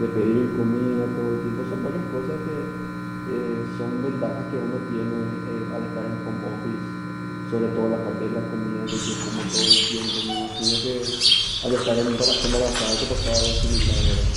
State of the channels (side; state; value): both; identical; correlation 1.00